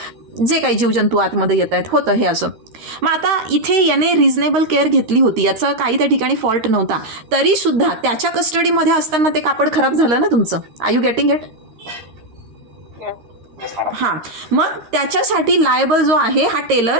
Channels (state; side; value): late; left; 13 ms